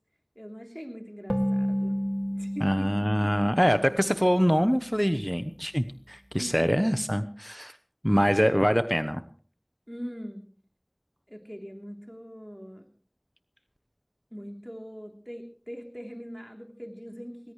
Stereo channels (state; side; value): identical; both; correlation 1.00